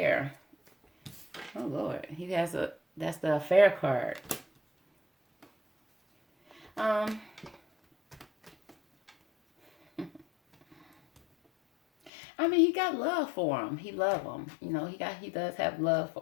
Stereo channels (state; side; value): drops out; right; at 12.1 s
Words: Oh Lord, he has that's the affair card. I mean, he got love for him. He love him. You know, he does have love